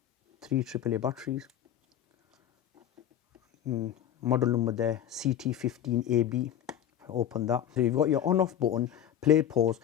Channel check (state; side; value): quieter; right; 10.4 dB